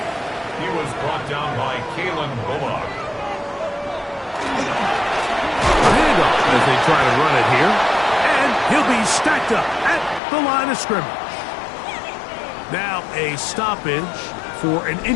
He was brought down by Kalen Bullock. A handoff as they try to run it here. And he'll be stacked up at the line of scrimmage. Now a stoppage for an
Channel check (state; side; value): drops out; right; at 10.2 s